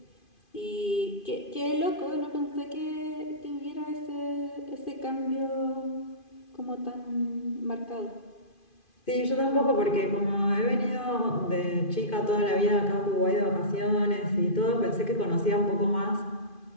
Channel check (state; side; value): late; right; 2.5 ms